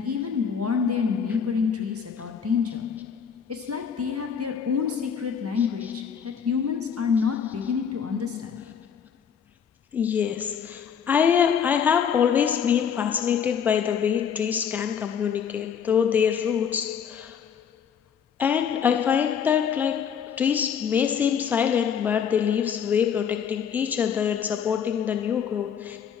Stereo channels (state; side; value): quieter; right; 7.5 dB